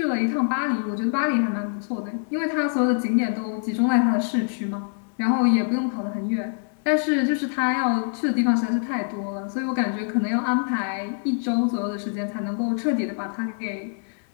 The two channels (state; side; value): silent; right; 62 dB below the other